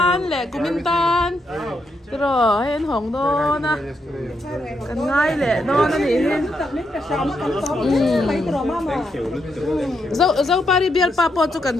le kumintan. rồi hen hồng đó na cần ngay lệ đó nó thì hen dâu pari biar papo cho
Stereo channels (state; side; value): normal; both; correlation 0.80